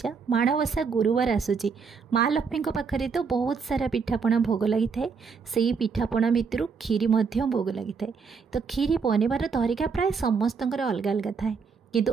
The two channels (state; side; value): quieter; left; 5.6 dB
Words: माणवसा गुरुवार आसूची। माँ लक्ष्मी पाखे तो बहुत सारा पिठापणा भोग लगी थाए। से पिठापणा भितर खीरी भोग लगी थाए। तो खीरी बनवार तरीका प्राय समस्त अलग अलग थाए, किंतु